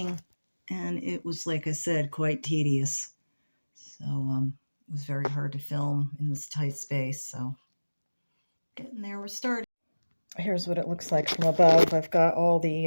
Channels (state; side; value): inverted; both; correlation -1.00